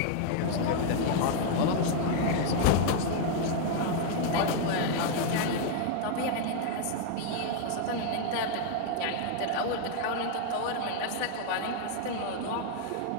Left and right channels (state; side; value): different; both; correlation -0.01